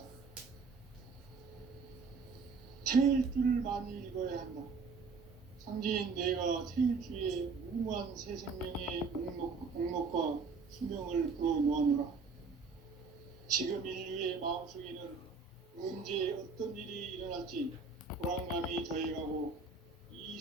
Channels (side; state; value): left; quieter; 4.6 dB